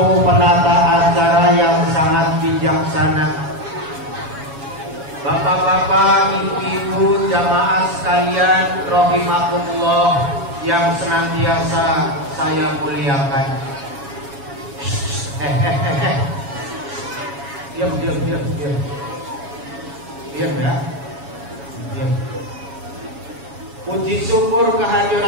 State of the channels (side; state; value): left; late; 7.2 ms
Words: penata acara yang sangat bijaksana, bapak-bapak, ibu-ibu, jamaah sekalian rahimakumullah yang senantiasa saya muliakan. Diam ya. Diam. Puji syukur